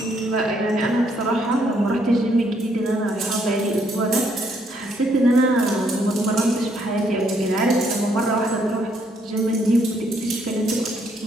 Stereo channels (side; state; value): both; normal; correlation 0.71